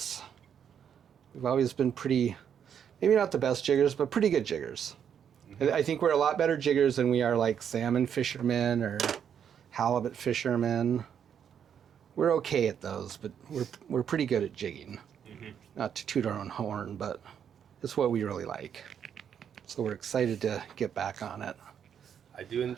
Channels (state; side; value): quieter; left; 8.3 dB